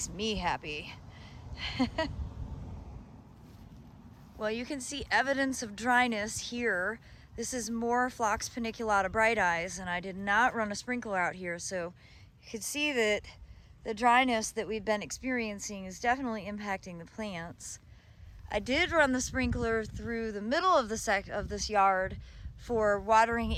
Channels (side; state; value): both; identical; correlation 1.00